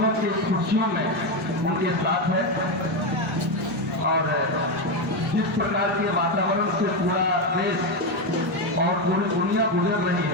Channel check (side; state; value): both; normal; correlation 0.10